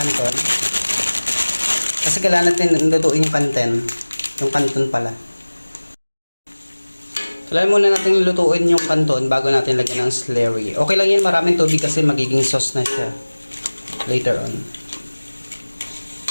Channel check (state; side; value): inverted; both; correlation -1.00